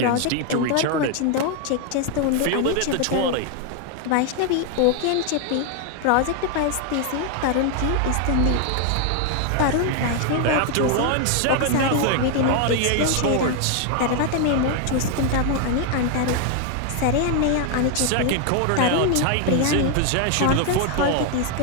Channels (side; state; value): both; different; correlation 0.01